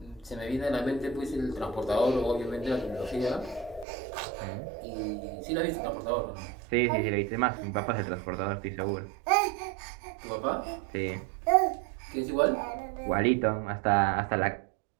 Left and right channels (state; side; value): drops out; left; at 3.9 s